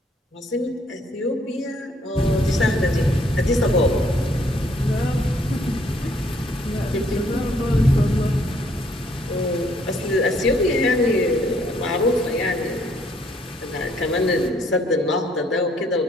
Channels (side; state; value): both; normal; correlation 0.66